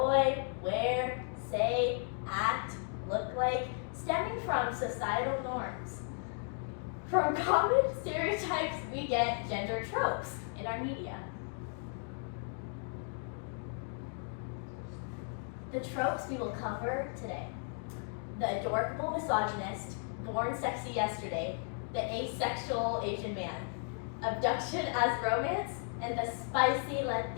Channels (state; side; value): silent; right; 54 dB below the other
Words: wear, say, act, look like, stemming from societal norms. From common stereotypes, we get gender tropes in our media. The tropes we will cover today: the adorable misogynist, born sexy yesterday, the asexual Asian man, abduction as romance, and the spicy